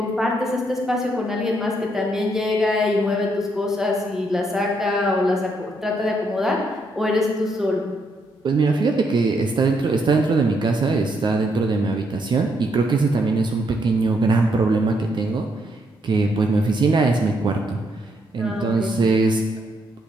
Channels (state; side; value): normal; both; correlation 0.75